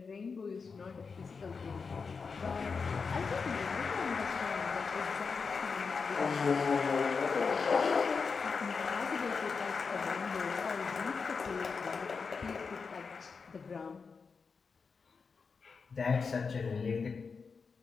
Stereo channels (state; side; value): quieter; right; 5.1 dB